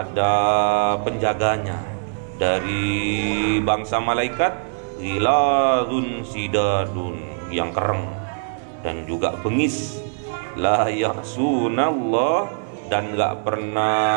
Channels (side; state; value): left; silent; digital silence